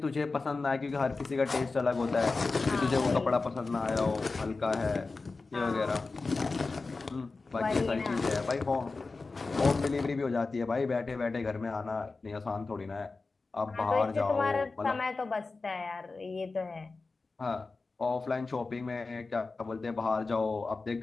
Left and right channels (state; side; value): quieter; right; 3.9 dB